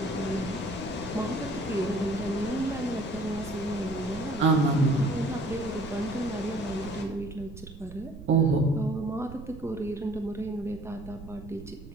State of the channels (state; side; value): noise; right; rumble, 14 dB below the sound